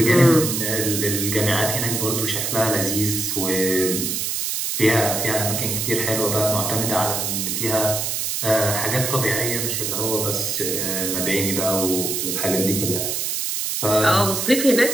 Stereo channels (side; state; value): right; noise; hiss, 1 dB below the sound